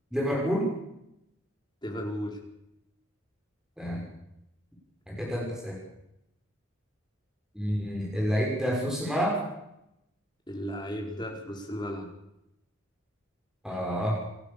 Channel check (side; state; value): both; normal; correlation 0.69